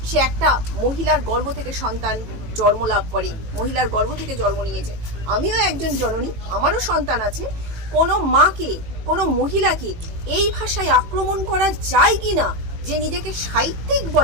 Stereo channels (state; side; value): late; left; 18 ms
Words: সে একটা মহিলার গর্ভ থেকে সন্তান জন্ম লাভ করে, মহিলার গর্ভ থেকে জন্ম নিয়েছে। আমিও একজন জননী, আমারও সন্তান আছে। কোনো মাকে, কোনো মহিলাকে এই ভাষায় আক্রমণ করা যায় কি না, যে নিজেকে সাহিত্যিক